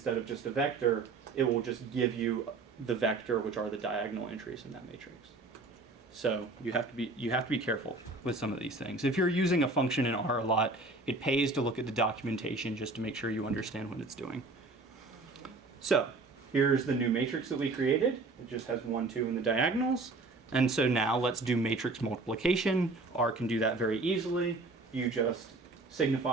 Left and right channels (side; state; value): left; quieter; 3.4 dB